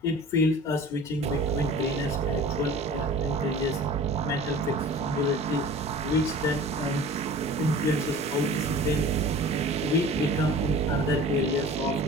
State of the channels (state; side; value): normal; both; correlation 0.41